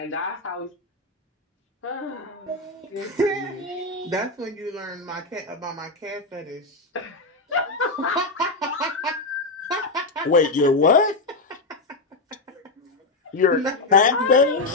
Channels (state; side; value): quieter; right; 3.2 dB